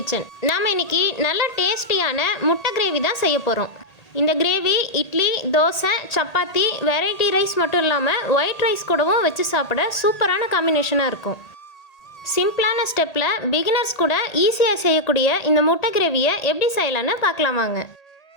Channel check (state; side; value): late; right; 1.8 ms